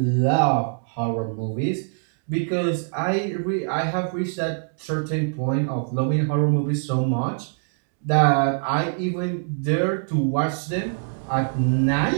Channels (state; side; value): silent; left; digital silence